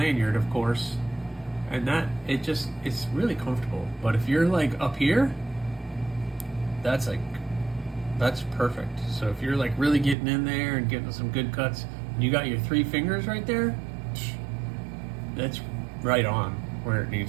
of course, and that it's really comfortable. But if you're like up here, that's perfect. So if you're like really getting in there and getting some good cuts, and you got your 3 fingers right there, that's right on where it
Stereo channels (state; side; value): drops out; left; at 10.2 s